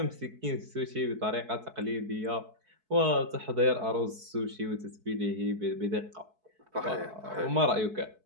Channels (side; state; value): left; late; 4.6 ms